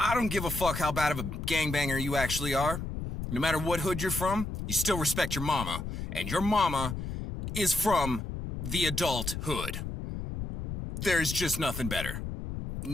don't give a fuck how bad of a gangbanger you actually are. No matter what hood you're from, you still respect your mama. And your mama is from the adult hood. There's just nothing better.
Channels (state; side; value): noise; left; rumble, 5 dB below the sound